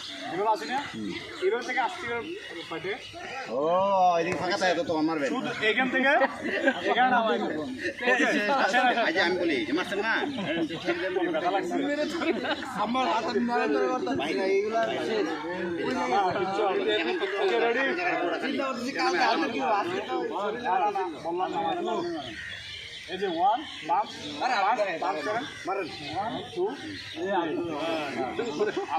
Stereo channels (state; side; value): identical; both; correlation 1.00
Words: এগুলো আছে না, এগুলো থেকে আসতে পারে। ও এদিকে ফাঁকা থাকে তো তোমার মারবে শুধু এখান থেকে এখানে নামাই দেবো। আজ আমি বলি যে মারছেন না, ব্যথা লাগছে আমার হাতে মারা ধরে করতে ভাই না, এইগুলা শেষ। ওকে রেডি, চিন্তা করতেছি কালকে হাতে কি আজকে তো বললাম না এই যে 1 বাম বাম করেন, মারেন 1 2